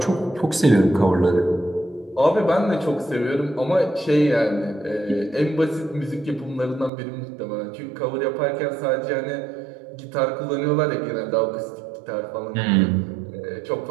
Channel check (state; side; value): drops out; left; at 6.9 s